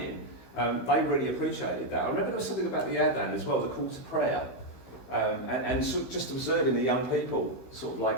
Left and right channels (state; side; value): late; right; 16 ms